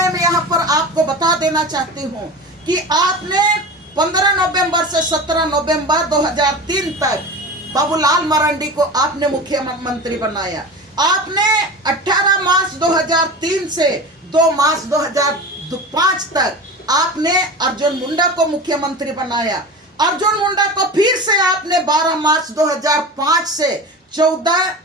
यहाँ पर आपको बता देना चाहती हूँ कि आपने 15 नवंबर से 17 नवंबर 2003 तक बाबूलाल मरांडी को आपने मुख्यमंत्री बनाया। आपने 18 मार्च 2003 से 2 मार्च 2005 तक आपने अर्जुन मुंडा को मुख्यमंत्री बनाया। अर्जुन मुंडा को फिर से आपने 12 मार्च 2005 से 14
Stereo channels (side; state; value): both; normal; correlation 0.31